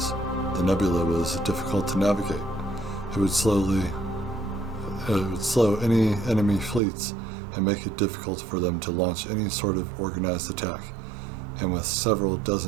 The nebula was difficult to navigate. It would slow any enemy fleets and make it difficult for them to launch any sort of organized attack. And with several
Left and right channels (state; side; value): drops out; left; at 6.8 s